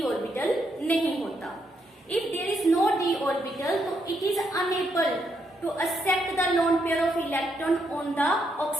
ऑर्बिटल नहीं होता। If there is no d orbital तो it is unable to accept the lone pair of electron on the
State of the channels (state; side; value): normal; both; correlation 0.78